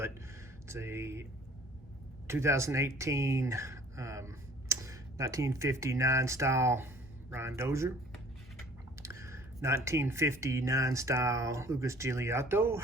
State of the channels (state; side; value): normal; both; correlation 0.53